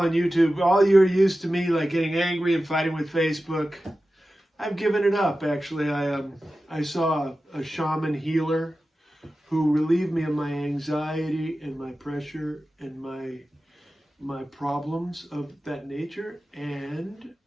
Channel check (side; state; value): both; normal; correlation 0.94